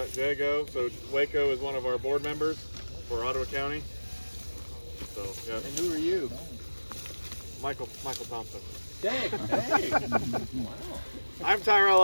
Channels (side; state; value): both; inverted; correlation -1.00